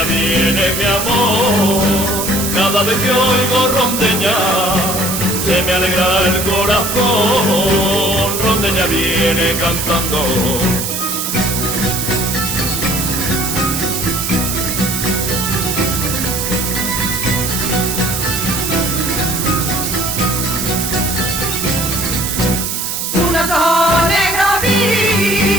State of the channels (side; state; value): right; noise; hiss, 2 dB below the sound